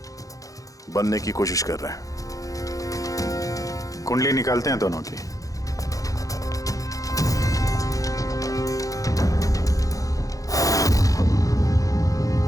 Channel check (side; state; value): right; late; 0.17 ms